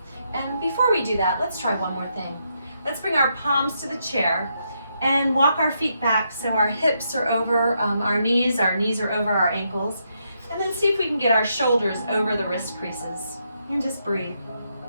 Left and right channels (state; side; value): inverted; both; correlation -0.79